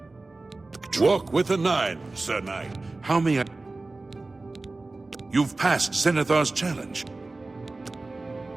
Walk with the 9, Sir Knight. How may I... You've passed Zenithar's challenge.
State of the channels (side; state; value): left; quieter; 3.3 dB